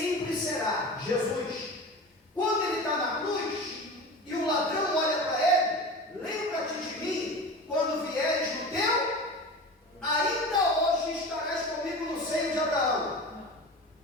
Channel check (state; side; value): normal; both; correlation 0.32